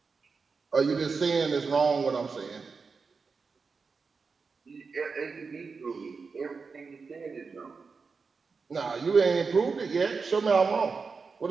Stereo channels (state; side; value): quieter; left; 4.8 dB